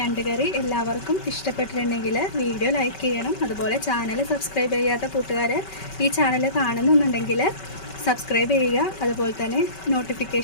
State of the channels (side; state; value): right; late; 5.2 ms